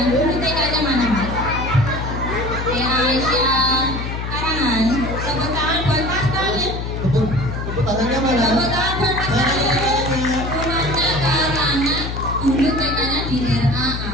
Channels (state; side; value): noise; left; hum, 5 dB below the sound